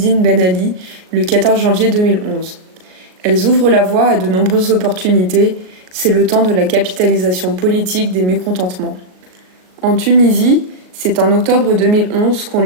Ben Ali le 14 janvier 2011. Elles ouvrent la voie à de nombreuses opportunités, c'est le temps de la capitalisation politique des mécontentements. En Tunisie, c'est en octobre 2011 qu'ont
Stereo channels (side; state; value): left; late; 38 ms